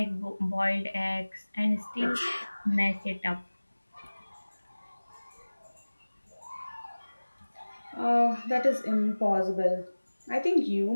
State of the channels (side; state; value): both; inverted; correlation -1.00